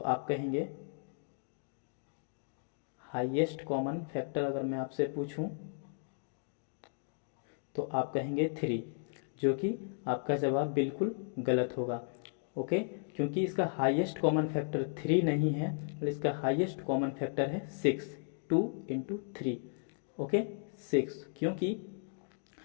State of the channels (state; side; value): silent; right; digital silence